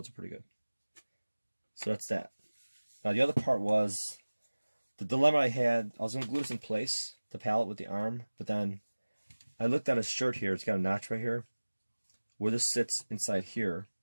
it pretty good. So that's that. Now the other part was the dilemma I had. I was going to glue this in place, the pallet with the arm, but then I looked at his shirt here. It's got a notch right here. Where this sits inside here,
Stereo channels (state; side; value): inverted; both; correlation -1.00